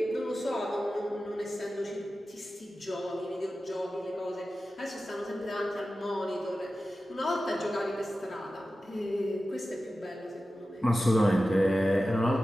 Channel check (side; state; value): both; normal; correlation 0.94